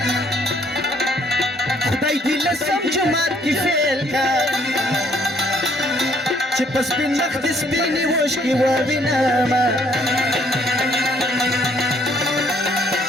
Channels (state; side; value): normal; both; correlation 0.65